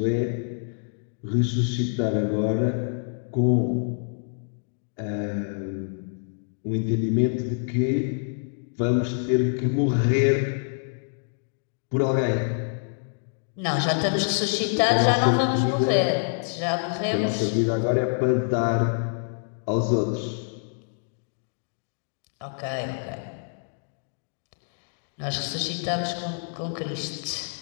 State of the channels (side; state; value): right; silent; digital silence